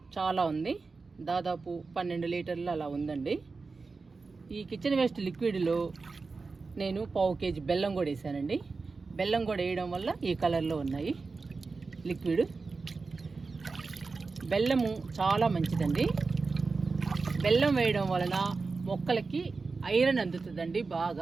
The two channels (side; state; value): left; quieter; 4.2 dB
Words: చాలా ఉంది. దాదాపు 12 లీటర్లు అలా ఉందండి. ఈ కిచెన్ వేస్ట్ లిక్విడ్లో నేను 1/2 కేజీ బెల్లం కూడా వేసానండి. బెల్లం కూడా వేయడం వల్ల ఈ కలర్లో ఉన్నాయి లిక్విడ్. బెల్లము చాలా మంచిదండి. బెల్లం వేయడం వలన మొక్కలకి ఐరన్ అందుతుందండి